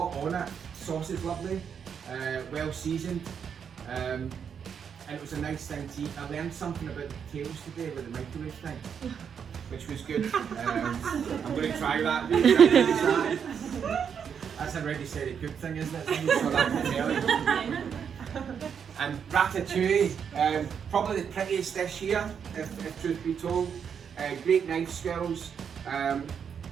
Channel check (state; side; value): quieter; left; 7.3 dB